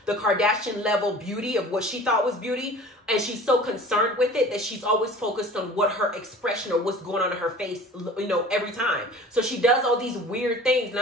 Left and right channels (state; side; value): normal; both; correlation 0.43